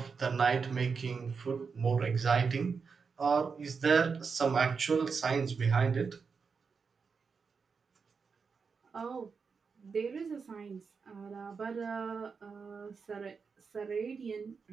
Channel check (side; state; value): left; quieter; 5.4 dB